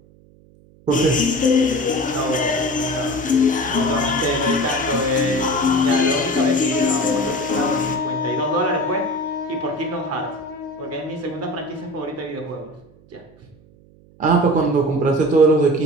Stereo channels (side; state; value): right; noise; hum, 27 dB below the sound